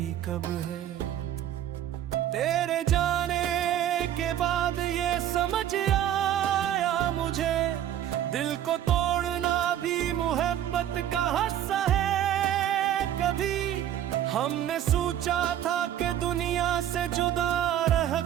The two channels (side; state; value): left; quieter; 11.2 dB